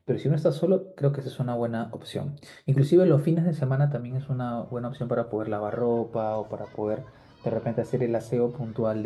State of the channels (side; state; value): both; identical; correlation 1.00